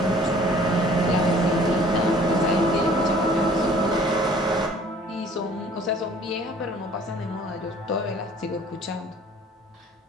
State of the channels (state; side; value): normal; both; correlation 0.53